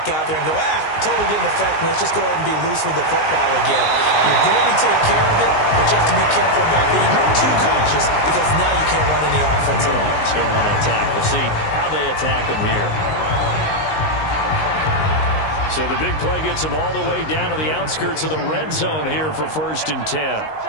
out there and go, totally didn't affect me. Let's just go ahead and be loose with the football again. You're going to take care of it, but you have to be careful about being too cautious because now you can't run any offense at all. Still want to attack. We'll see how they attack them here. So the big play gets them all the way down to the outskirts of the red zone here for 1st and 10.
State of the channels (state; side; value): late; right; 19 ms